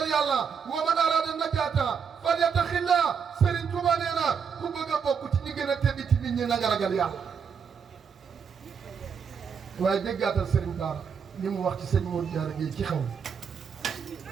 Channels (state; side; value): quieter; left; 6.6 dB